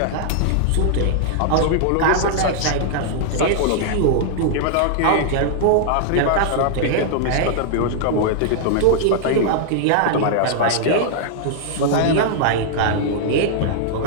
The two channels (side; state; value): both; different; correlation -0.01